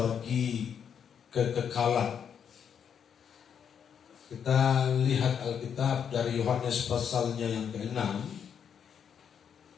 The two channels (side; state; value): right; quieter; 7.8 dB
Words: kekekalan. Kita lihat Alkitab dari Yohanes pasalnya yang ke-6.